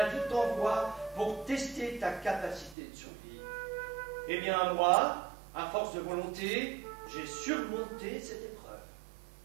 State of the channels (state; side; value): drops out; left; at 2.8 s